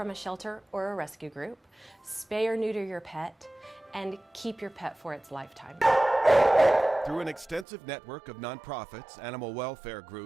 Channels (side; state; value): left; drops out; at 7.7 s